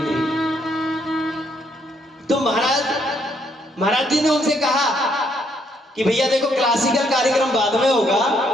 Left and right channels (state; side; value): normal; both; correlation 0.71